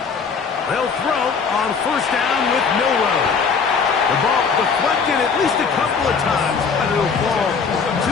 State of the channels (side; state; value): right; quieter; 5.6 dB